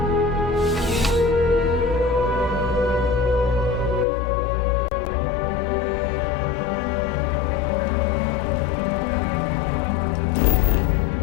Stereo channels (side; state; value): right; drops out; at 4.0 s